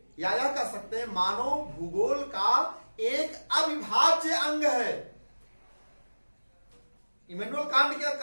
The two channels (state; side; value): inverted; both; correlation -1.00